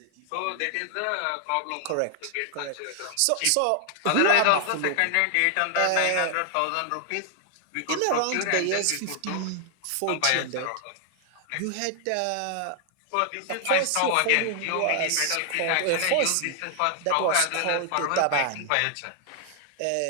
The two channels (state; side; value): different; both; correlation 0.00